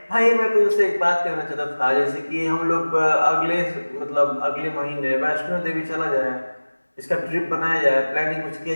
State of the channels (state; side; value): inverted; both; correlation -1.00